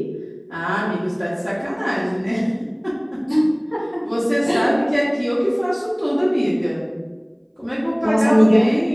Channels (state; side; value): identical; both; correlation 1.00